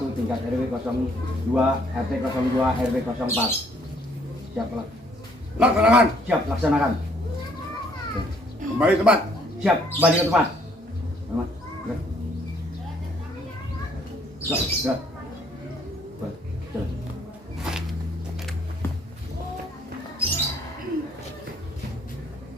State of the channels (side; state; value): both; normal; correlation 0.64